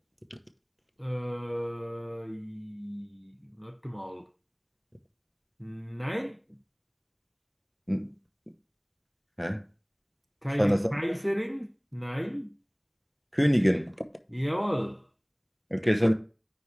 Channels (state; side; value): identical; both; correlation 1.00